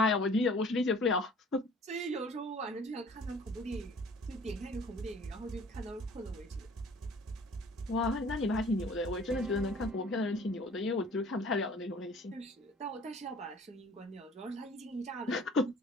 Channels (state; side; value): normal; both; correlation 0.50